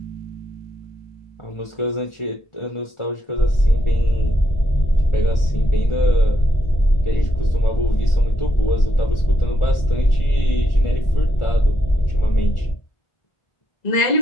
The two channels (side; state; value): right; late; 1.4 ms